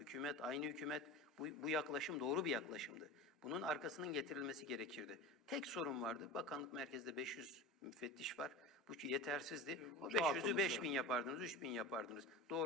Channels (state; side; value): normal; both; correlation 0.30